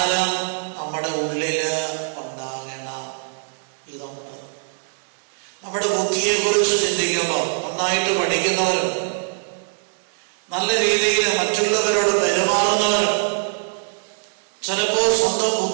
നമ്മുടെ ഉള്ളില് ഉണ്ടാകണം. ഇതുണ്ട്. നമ്മുടെ ബുദ്ധിയെ കുറിച്ച് ചിന്തിക്കുമ്പോൾ നന്നായിട്ട് പഠിക്കുന്നവരുണ്ട്, നല്ല രീതിയിൽ മറ്റുള്ളവരോട് പെരുമാറുന്നവരുണ്ട്, ചിലപ്പോൾ സ്വന്തം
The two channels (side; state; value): left; silent; 64 dB below the other